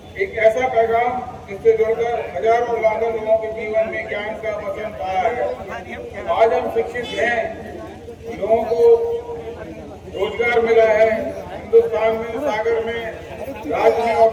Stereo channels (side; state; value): both; identical; correlation 1.00